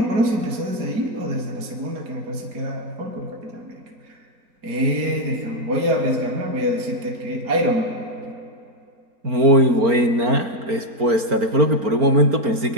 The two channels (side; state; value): left; late; 4.4 ms